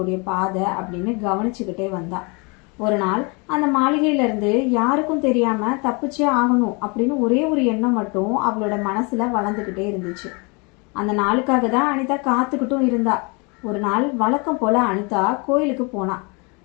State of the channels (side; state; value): right; quieter; 30.6 dB